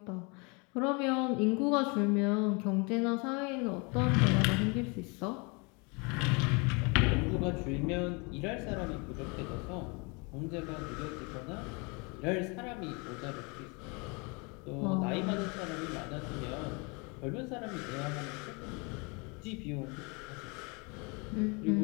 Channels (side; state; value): right; quieter; 30.7 dB